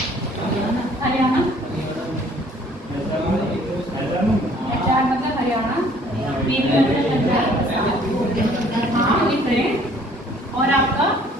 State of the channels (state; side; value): normal; both; correlation 0.57